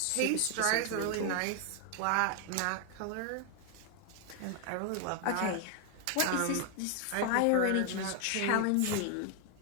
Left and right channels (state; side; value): different; both; correlation 0.00